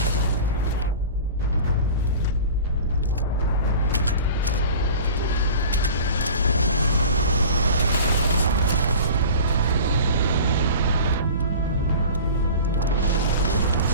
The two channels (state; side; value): inverted; both; correlation -0.38